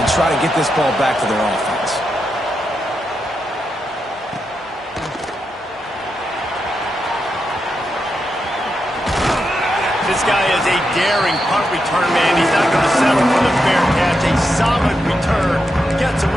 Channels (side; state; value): both; normal; correlation 0.85